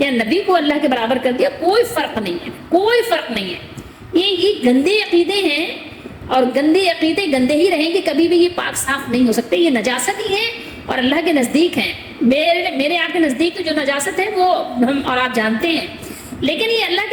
نبی کو اللہ کے برابر کر دیا، کوئی فرق نہیں ہے، کوئی فرق نہیں ہے. یہ گندے عقیدے ہیں، اور گندے عقیدے گندے ہی رہیں گے، کبھی بھی یہ پاک صاف نہیں ہو سکتے. یہ نجاست ہی ہے اور اللہ کے نزدیک ہیں. میرے آپ کے نزدیک تو جو نجاست ہے وہ ہم اور آپ جانتے ہیں، لیکن یہ اللہ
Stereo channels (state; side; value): identical; both; correlation 1.00